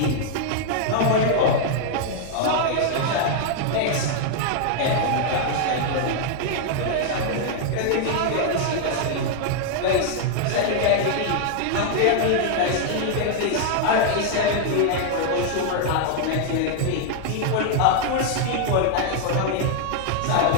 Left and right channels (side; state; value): both; different; correlation 0.00